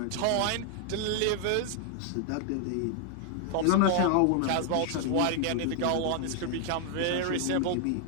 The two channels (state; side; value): different; both; correlation 0.00